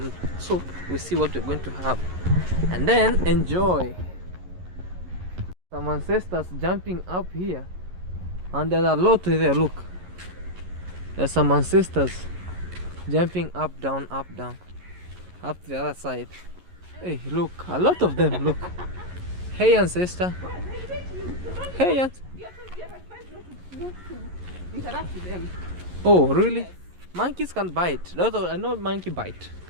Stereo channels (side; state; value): left; late; 11 ms